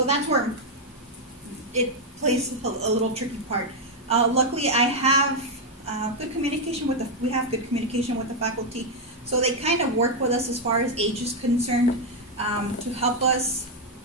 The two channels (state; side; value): normal; both; correlation 0.01